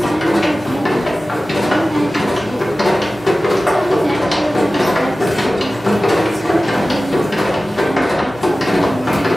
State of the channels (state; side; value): normal; both; correlation 0.96